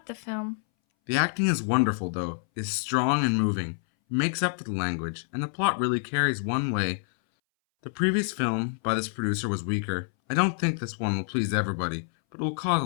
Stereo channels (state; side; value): silent; right; 60 dB below the other